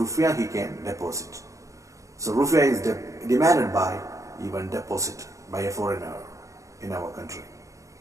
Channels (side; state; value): left; late; 0.15 ms